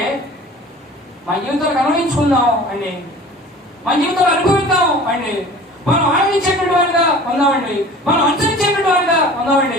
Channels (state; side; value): normal; both; correlation 0.43